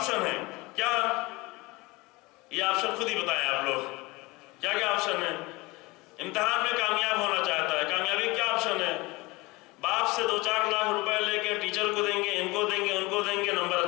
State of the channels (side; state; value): right; quieter; 23.1 dB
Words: ہیں، کیا یہ آپشن خود ہی بتائیں آپ لوگ، کیا کیا آپشن ہے؟ امتحان میں کامیاب ہونا چاہتا ہے، کامیابی کیا آپشن ہے؟ باپ سے 2-4 لاکھ روپے لے کے ٹیچر کو دیں گے، ان کو دیں گے، ان کو دیں گے، نمبر